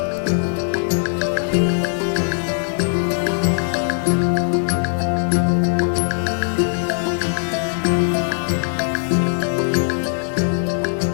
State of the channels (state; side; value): silent; right; digital silence